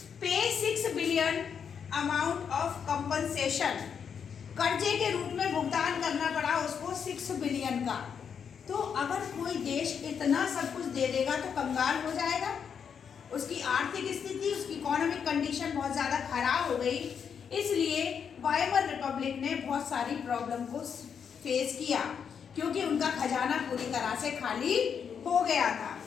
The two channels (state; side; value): quieter; right; 7.1 dB